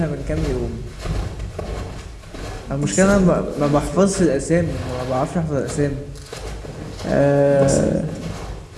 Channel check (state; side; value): identical; both; correlation 1.00